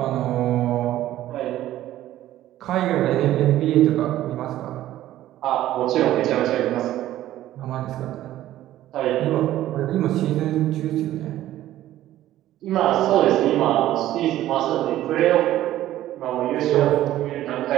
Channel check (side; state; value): left; quieter; 13.8 dB